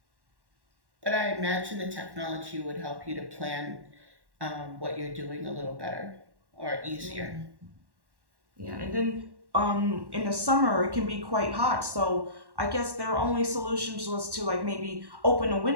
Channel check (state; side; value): late; left; 1.1 ms